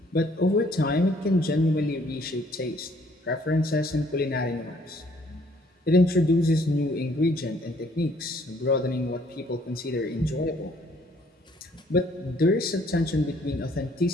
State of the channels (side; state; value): both; normal; correlation 0.63